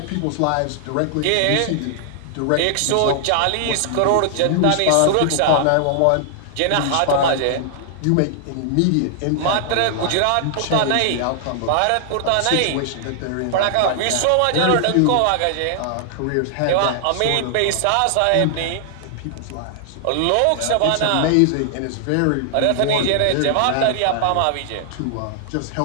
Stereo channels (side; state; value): both; different; correlation 0.00